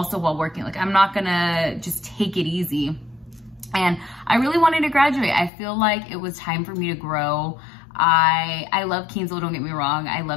while working. Like I'm not going to just take it easy. And I really wanted to graduate. I feel like it was time for me to grow. I love Kingsville, don't get me wrong. I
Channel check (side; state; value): right; drops out; at 5.5 s